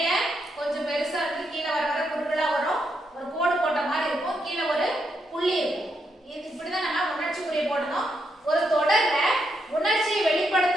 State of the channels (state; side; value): normal; both; correlation 0.80